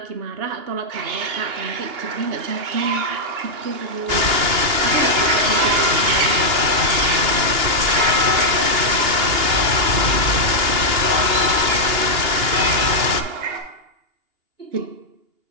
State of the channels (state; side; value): late; left; 2.8 ms